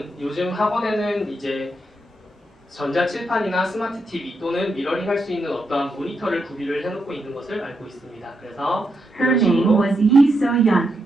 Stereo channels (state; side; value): normal; both; correlation 0.82